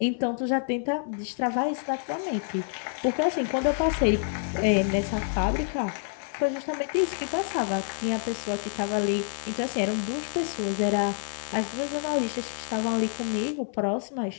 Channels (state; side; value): silent; right; 60 dB below the other